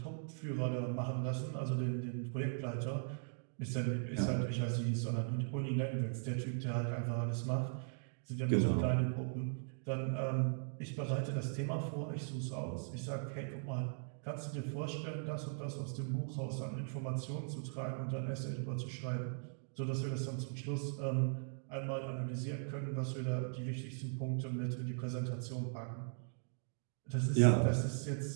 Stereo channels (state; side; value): silent; left; digital silence